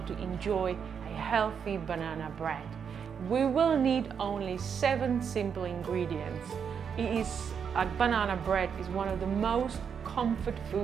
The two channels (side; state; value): left; quieter; 7.1 dB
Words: enjoy a healthy banana bread. We will need only 7 simple ingredients. Banana bread is one of the most comfort